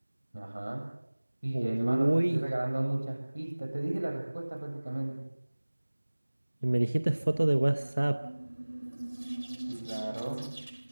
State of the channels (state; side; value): inverted; both; correlation -1.00